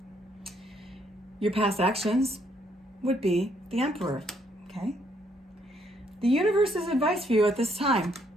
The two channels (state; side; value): normal; both; correlation 0.70